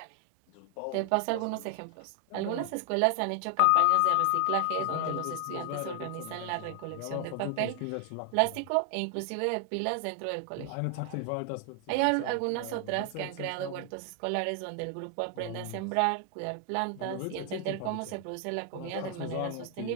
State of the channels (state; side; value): different; both; correlation 0.00